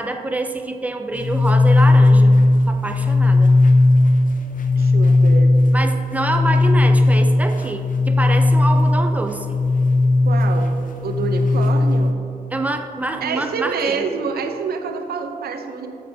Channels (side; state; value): both; normal; correlation 0.93